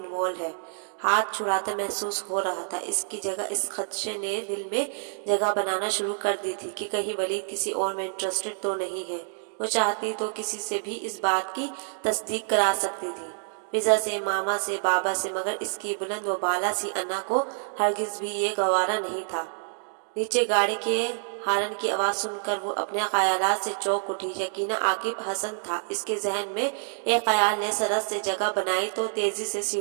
ہے، ہاتھ چھڑاتا محسوس ہو رہا تھا۔ اس کی جگہ اس خدشے نے دل میں جگہ بنانا شروع کر دی تھی کہ کہیں ولید کسی اور میں انٹرسٹڈ تو نہیں ہے۔ وہ چاہتی تو کسی سے بھی اس بات کی تصدیق کرا سکتی تھی، فضا سے، ماما سے، بابا سے، مگر اس کی بلند و بالا سی انا کو ہرگز بھی یہ گوارا نہیں تھا۔ نیچے گاڑی کے ہارن کی آواز سن کر وہ اپنے خیالات سے چونک اٹھی۔ یقیناً عاقب حسن تھا۔ اس کے ذہن میں ایک خیال نے سرس سے جگہ بنائی تو تیزی سے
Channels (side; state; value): left; silent; digital silence